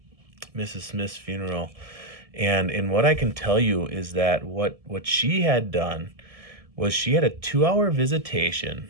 Mrs. Smith's funeral, and what I can tell you is that what she had done was she had a 2 hour visitation.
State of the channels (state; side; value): late; left; 1.7 ms